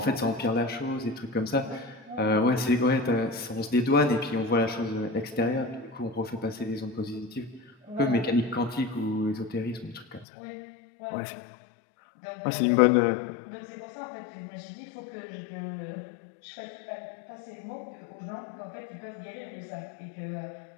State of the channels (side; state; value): right; drops out; at 10.2 s